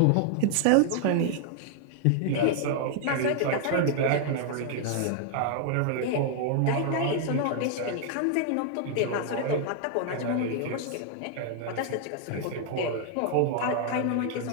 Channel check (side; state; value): both; different; correlation 0.00